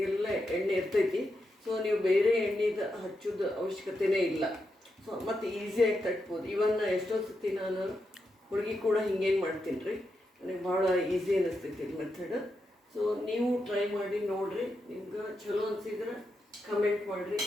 ಎಣ್ಣೆ ಇರ್ತೈತಿ. ಸೊ ನೀವು ಬೇರೆ ಎಣ್ಣೆದು ಹಚ್ಚೋದು ಅವಶ್ಯಕತೆಯೇ ಇಲ್ಲ. ಸೊ ಮತ್ತು ಈಸಿಯಾಗಿ ತಟ್ಬೋದು. ಇವನ್ ಎಷ್ಟೊಂದು ಸತಿ ನಾನು ಹುಡುಗಿ ಕೂಡ ಹಿಂಗೇನು ಮಾಡ್ತೀನಿ ರೀ, ನನಗೆ ಭಾಳ ಈಸಿ ಅನ್ನಿಸ್ತೈತಿ ಇದು ಮೆಥಡ್. ಸೊ ನೀವು ಟ್ರೈ ಮಾಡಿ ನೋಡಿರಿ. ನಿಮ್ಗೆ ಚಲೋ ಅನಿಸಿದ್ರೆ ಕಮೆಂಟ್ ಮಾಡಿರಿ,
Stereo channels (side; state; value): both; normal; correlation 0.86